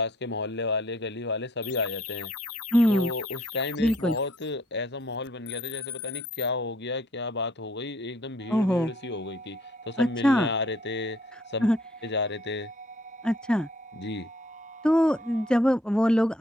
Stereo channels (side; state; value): both; normal; correlation 0.63